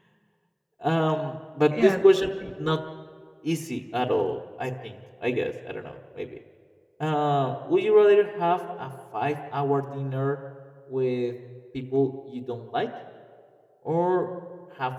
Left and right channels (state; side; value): identical; both; correlation 1.00